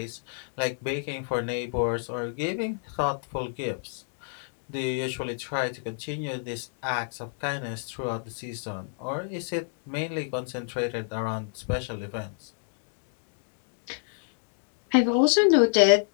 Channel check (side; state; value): right; silent; digital silence